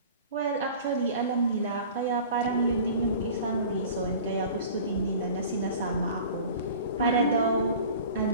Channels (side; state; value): both; inverted; correlation -0.42